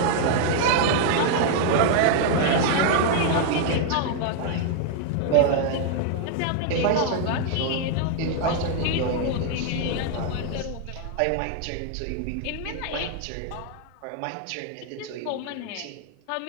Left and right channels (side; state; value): both; different; correlation 0.00